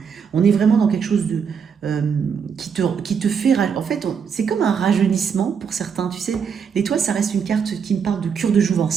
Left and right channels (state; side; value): quieter; left; 6.7 dB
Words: On est vraiment dans quelque chose qui te fait... En fait, c'est comme un rajeunissement pour certains. Tu sais, l'étoile, ça reste une carte qui me parle de cure de